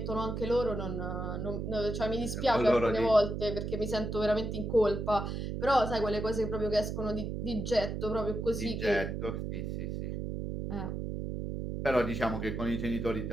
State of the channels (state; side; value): noise; right; hum, 4 dB below the sound